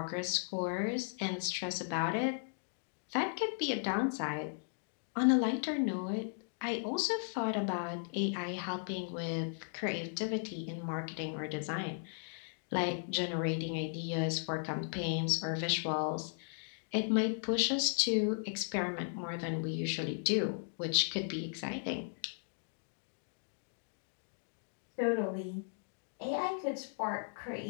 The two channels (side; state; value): right; silent; digital silence